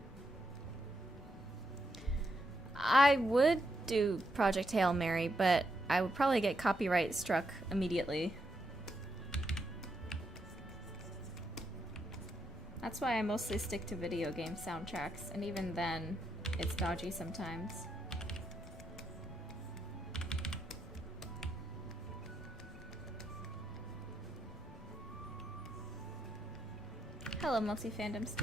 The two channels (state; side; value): normal; both; correlation 0.80